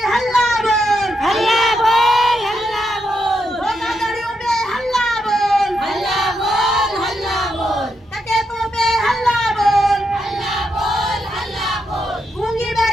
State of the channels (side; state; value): both; normal; correlation 0.82